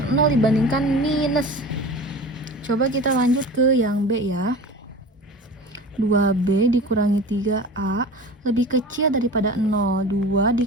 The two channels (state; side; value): normal; both; correlation 0.35